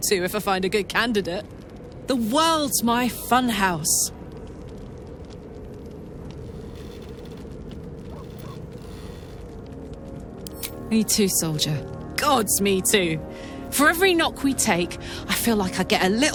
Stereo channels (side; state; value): both; identical; correlation 1.00